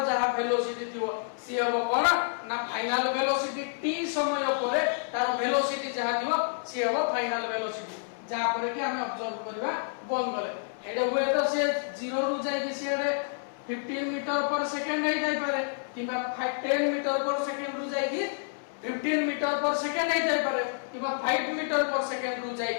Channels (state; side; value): silent; right; 59 dB below the other